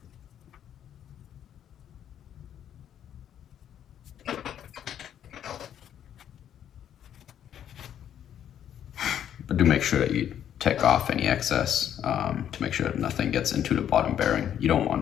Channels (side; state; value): right; quieter; 9.9 dB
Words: But do make sure that you take off any excess to make sure that nothing gets into the bottom bearing. You don't